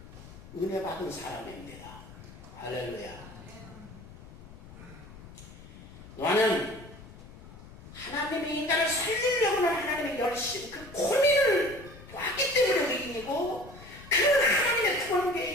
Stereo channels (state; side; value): noise; left; rumble, 17 dB below the sound